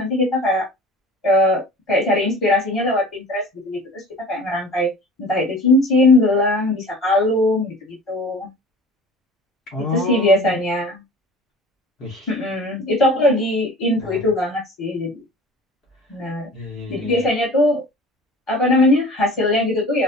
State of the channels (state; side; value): normal; both; correlation 0.42